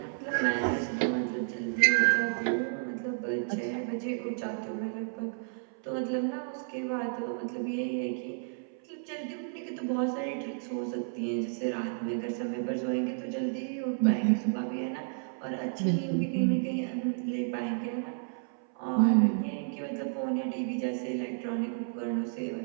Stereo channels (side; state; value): left; silent; 57 dB below the other